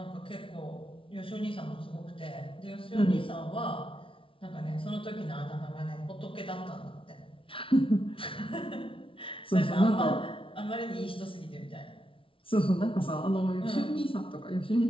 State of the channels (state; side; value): late; right; 0.25 ms